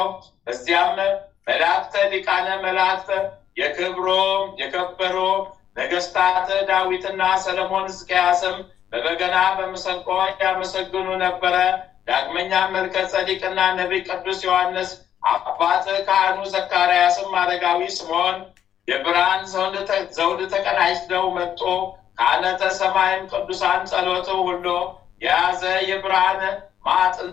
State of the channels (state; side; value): quieter; right; 9.9 dB